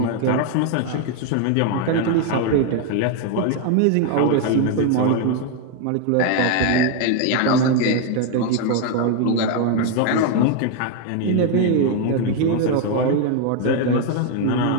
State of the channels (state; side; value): different; both; correlation 0.00